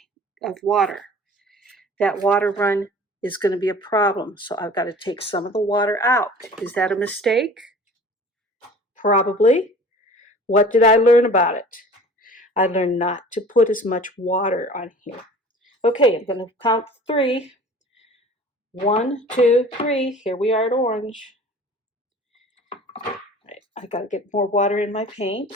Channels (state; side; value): normal; both; correlation 0.44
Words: water. That water run is going to be a problem, so I've got to take some of the water out. Is that a mistake? Probably. What did I learn about it? I learned not to put as much water on here. Okay, I'm going to count 3. 1, 2, 3. Here we are at orange. Right, I got to get more water in my